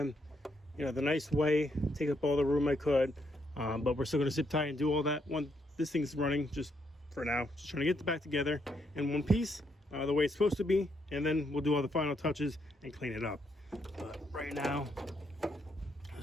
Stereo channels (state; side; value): normal; both; correlation 0.76